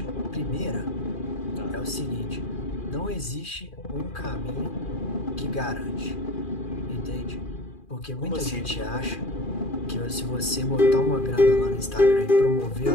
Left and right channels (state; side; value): late; right; 2.4 ms